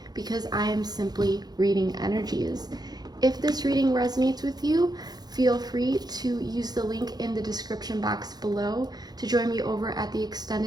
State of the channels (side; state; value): left; late; 0.19 ms